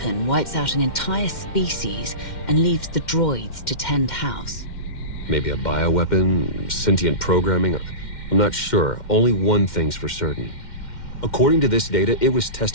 wipes out an entire species and leaves the droids to tend house? Maybe a bioweapon, sentient programming? I'm not sure. Only one thing's for certain. According to this data, it was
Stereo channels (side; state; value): right; late; 2.1 ms